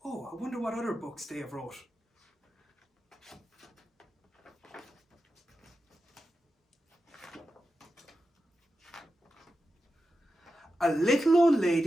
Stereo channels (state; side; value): normal; both; correlation 0.90